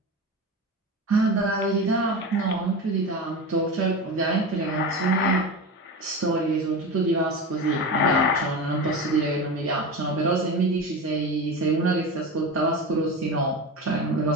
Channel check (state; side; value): normal; both; correlation 0.25